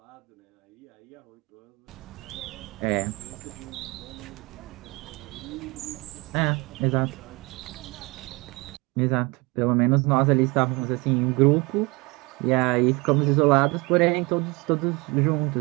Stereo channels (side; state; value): left; quieter; 25.7 dB